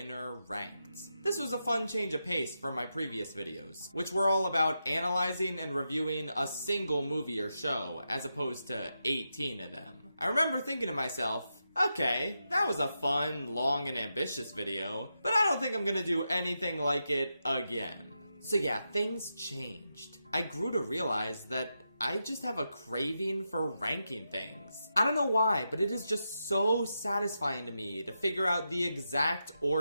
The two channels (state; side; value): inverted; both; correlation -0.87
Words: ranked. This was a fun change of pace from my previous videos, which were all about analyzing and reviewing a single movie or show, as opposed to 18 of them. I remember thinking to myself, okay, that was a fun, long, and ambitious video, but I don't think I'm gonna do anything like it again. So yeah, things changed. I grew to realize that I just have a craving for ranking things. I don't know why, but it is just so satisfying to me to figure out the exact